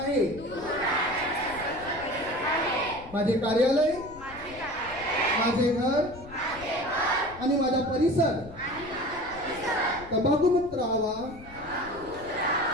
माझे कार्यालय, माझे घर आणि माझा परिसर तंबाखूमुक्त राहावा,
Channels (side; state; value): left; noise; rumble, 18 dB below the sound